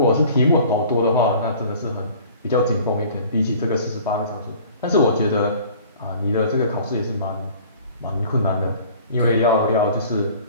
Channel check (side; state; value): both; inverted; correlation -0.49